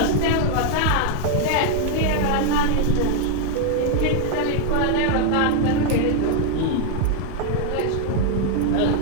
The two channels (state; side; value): different; both; correlation 0.00